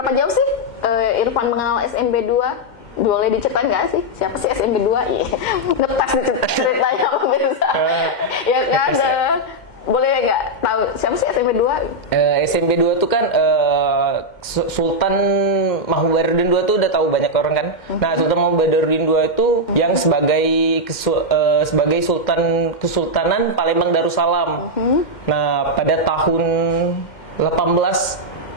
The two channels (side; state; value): right; late; 2.1 ms